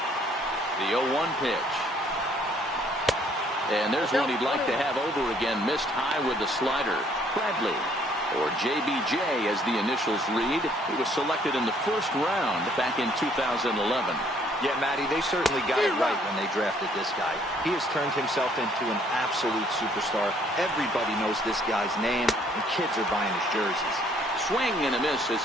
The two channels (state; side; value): normal; both; correlation 0.63